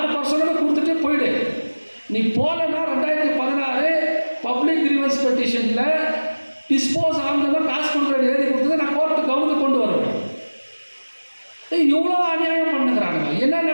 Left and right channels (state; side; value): inverted; both; correlation -1.00